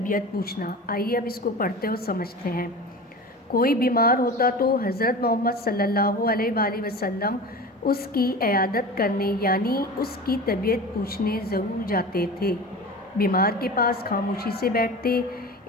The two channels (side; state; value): both; normal; correlation 0.33